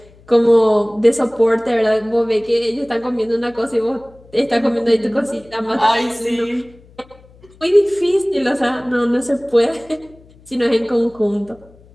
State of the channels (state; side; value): noise; left; hum, 26 dB below the sound